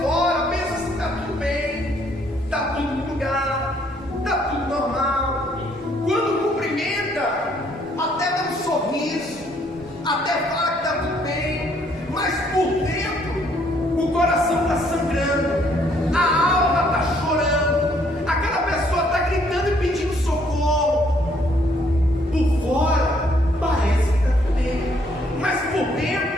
fora pensa assim: está tudo bem, está tudo no lugar, está tudo normal. Quando cumprimenta, até dá um sorriso, até fala que está tudo bem, mas por dentro o coração está sangrando, a alma está chorando, aquela pessoa está gritando e pedindo socorro. Por fora parece que está tudo bem, mas por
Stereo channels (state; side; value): normal; both; correlation 0.66